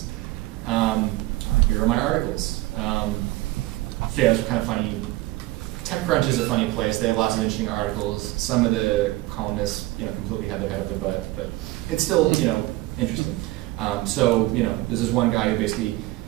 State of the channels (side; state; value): left; quieter; 18.3 dB